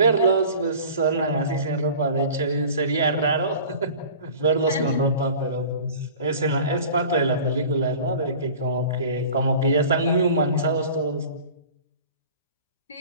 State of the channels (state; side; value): inverted; both; correlation -0.42